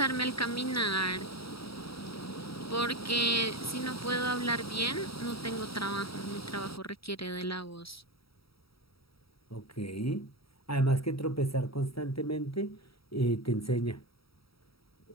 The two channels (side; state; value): right; late; 0.75 ms